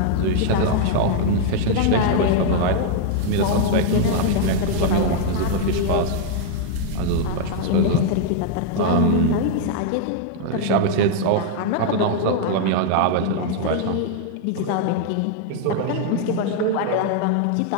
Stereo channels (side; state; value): both; different; correlation -0.01